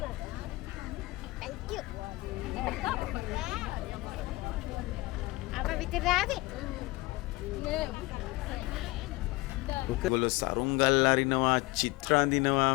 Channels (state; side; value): quieter; right; 21.7 dB